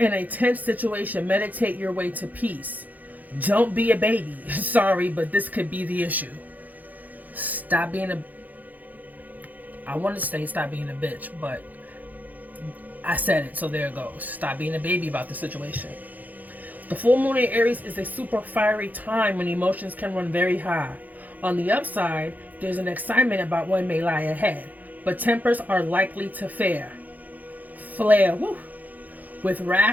tense situation. Meditate your way to peace. Don't be a baby. Sorry, but this could be the issue. Stop being a... I want to say stop being a bitch, but I said it, so there it goes. Stop being a baby about the situation. The full moon in Aries is a super fiery time when emotions can run very high. On the upside, there's an excitement about what may lie ahead, but tempers are likely to flare. Woo. With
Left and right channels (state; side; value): late; left; 0.081 ms